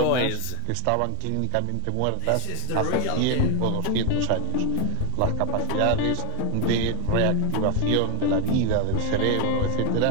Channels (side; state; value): both; different; correlation 0.00